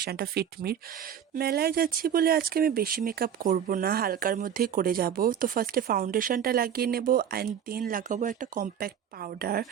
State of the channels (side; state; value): left; quieter; 8.9 dB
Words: ফিটমির। মেলায় যাচ্ছি বলে আজকে আমি বেশি মেকআপ করব না, হালকার মধ্যেই করে যাব। তো ফার্স্টে ফাউন্ডেশনটা লাগিয়ে নেব অ্যান্ড দেন লাগাবো একটা কম্প্যাক্ট পাউডার।